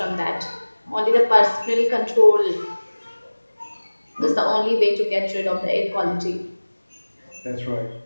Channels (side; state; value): both; inverted; correlation -1.00